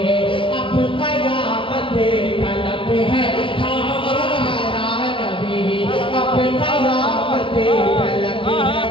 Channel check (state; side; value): late; right; 0.25 ms